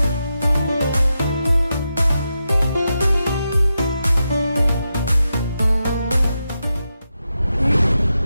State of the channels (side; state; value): both; inverted; correlation -0.88